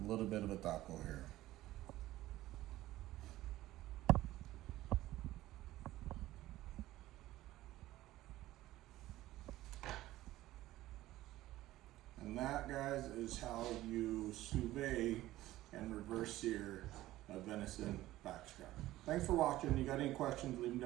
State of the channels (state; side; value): quieter; left; 15.8 dB